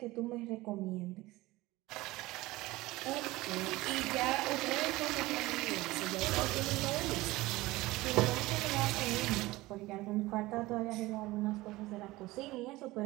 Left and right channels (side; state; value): left; quieter; 19.4 dB